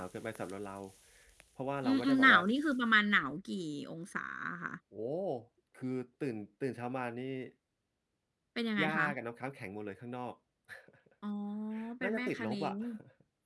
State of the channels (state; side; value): identical; both; correlation 1.00